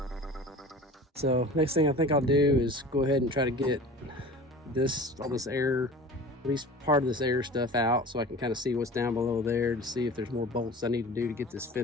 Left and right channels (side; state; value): both; normal; correlation 0.39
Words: So next thing I think I'll do is go ahead and try to get all this air, at least part of this air stuff out, so I can kind of see what's down below there to see if there's more bolts I need to do to get this